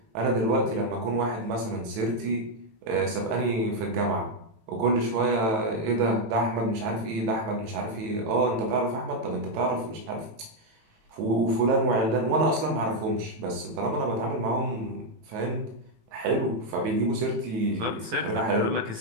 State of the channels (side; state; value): left; late; 18 ms